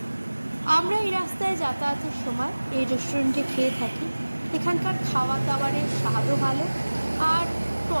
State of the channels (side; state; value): both; inverted; correlation -1.00